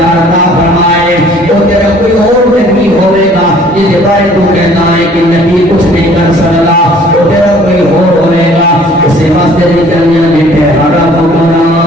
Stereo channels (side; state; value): both; normal; correlation 0.55